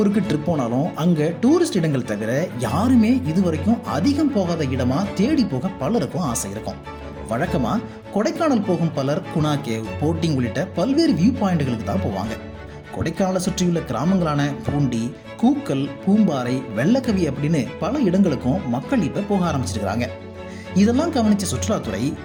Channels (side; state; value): both; identical; correlation 1.00